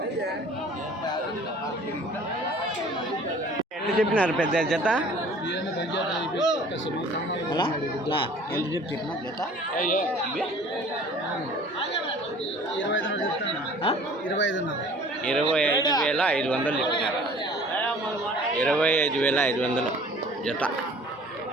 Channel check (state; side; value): normal; both; correlation 0.49